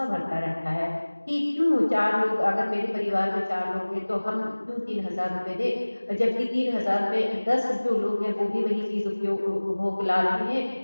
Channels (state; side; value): inverted; both; correlation -1.00